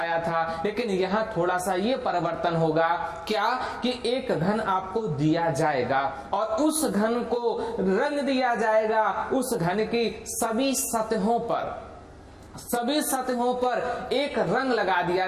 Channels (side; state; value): both; identical; correlation 1.00